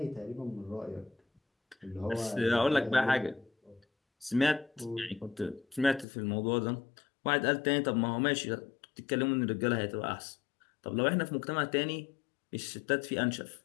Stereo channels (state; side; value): drops out; right; at 6.1 s